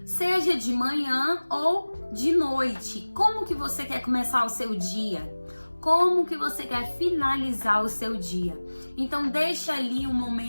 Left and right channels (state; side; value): inverted; both; correlation -1.00